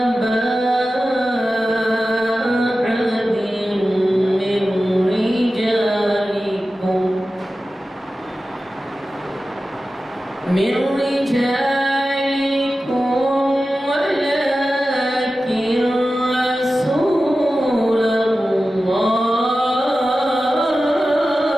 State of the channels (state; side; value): normal; both; correlation 0.94